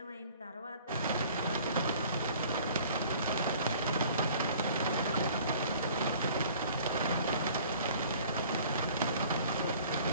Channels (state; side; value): inverted; both; correlation -0.50